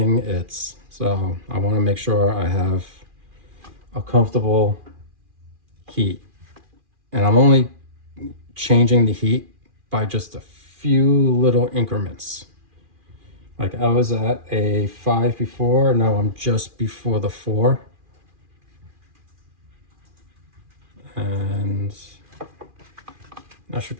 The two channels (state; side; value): late; left; 2.4 ms